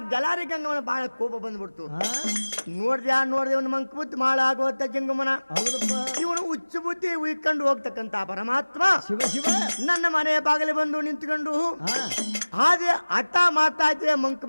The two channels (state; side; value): inverted; both; correlation -1.00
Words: ಜಲಾರಿ ಗಂಗಮ್ಮನ ಬಹಳ ಕೋಪ ಬಂದ್ಬಿಡ್ತು ನೋಡ್ದೆ ಒಂದು ಮಂಕ ಬುದ್ಧಿ ಮಾಳಾಗೋತ ಜಂಗಮನ ಹೌದಪ್ಪ ಇವನು ಹುಚ್ಚು ಬುದ್ಧಿ ಉಯ್ಕೊಂಡು ಹೋಗ್ತಕ್ಕಂತ ಪರಮಾತ್ಮ ಶಿವ ಶಿವ ನನ್ನ ಮನೆ ಬಾಗಿಲು ಬಂದು ನಿಂತ್ಕೊಂಡು ಹಾಗೆ ಹಠ ಮಾಡ್ತಾ ಇದ್ದೆ ಮಂಕ್